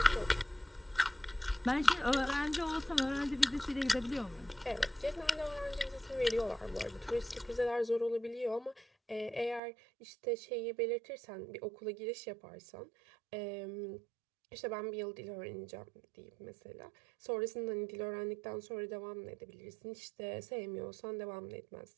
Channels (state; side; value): drops out; left; at 9.6 s